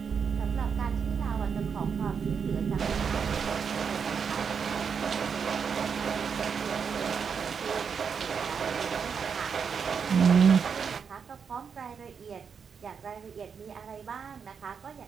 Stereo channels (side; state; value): left; quieter; 6.4 dB